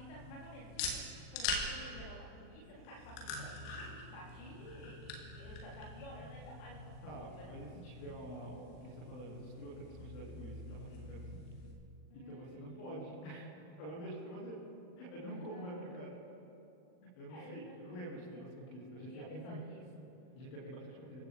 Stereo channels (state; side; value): late; right; 40 ms